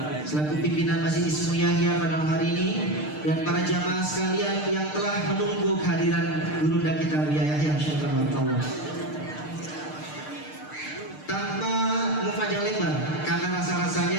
selaku pimpinan Masjid Ismu Yahya pada malam hari ini, dan para jamaah sekalian yang telah menunggu kehadiran Gurunda kita Buya Yahya. Insyaallah. Tanpa panjang lebar, karena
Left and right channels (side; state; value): right; late; 6.6 ms